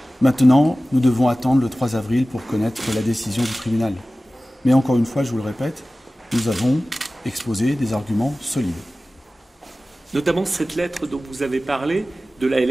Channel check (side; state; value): both; normal; correlation 0.96